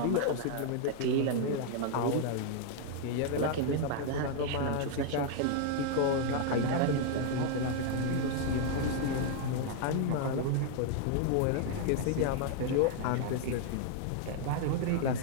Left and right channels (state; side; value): different; both; correlation 0.00